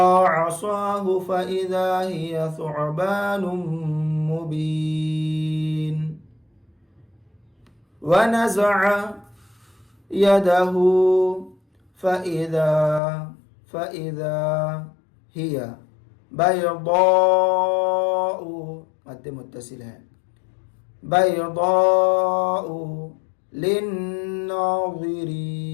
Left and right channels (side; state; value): right; drops out; at 13.0 s